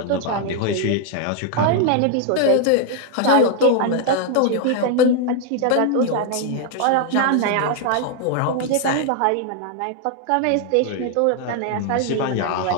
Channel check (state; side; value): different; both; correlation 0.00